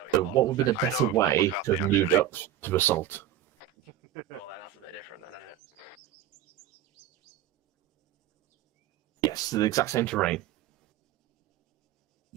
So what would be the better way to move up to assault? Oh, then that's a bit different then, isn't it? Yes, the exact same terrain.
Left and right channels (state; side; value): quieter; left; 11.0 dB